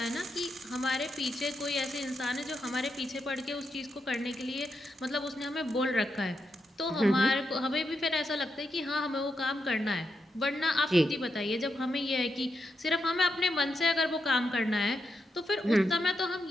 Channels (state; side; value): normal; both; correlation 0.84